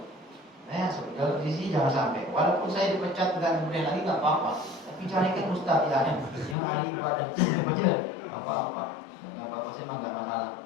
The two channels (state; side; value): drops out; right; at 6.6 s